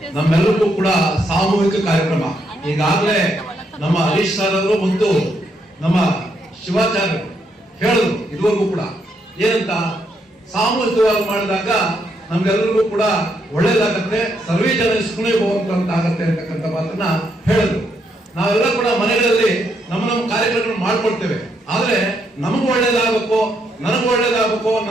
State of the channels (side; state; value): both; normal; correlation 0.77